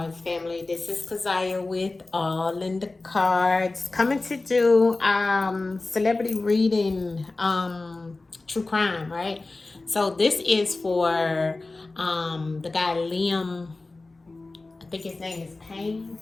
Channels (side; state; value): right; quieter; 3.3 dB